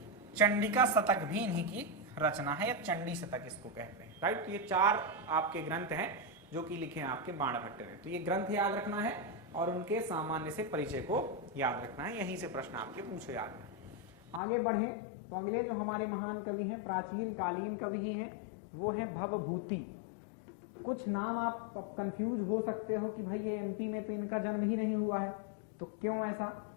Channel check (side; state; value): right; drops out; at 14.4 s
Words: चंडिका शतक भी इन्हीं की रचना है, या चंडी शतक इसको कहते हैं, राइट। तो ये 4 आपके ग्रंथ हैं जो कि लिखे हैं आपके बाण भट्ट ने। तो ये ग्रंथ याद रखना है और उनके सामान्य से परिचय को याद रखना है, यहीं से प्रश्न आपके पूछे जाते हैं। आगे बढ़े तो अगले जो हमारे महान कवि हैं, प्राचीन कालीन कवि ही हैं, वो है भवभूति। कुछ नाम आप कंफ्यूज हो सकते हो कि भाई ये एमपी में तो इनका जन्म ही नहीं हुआ है, तो क्यों ऐसा,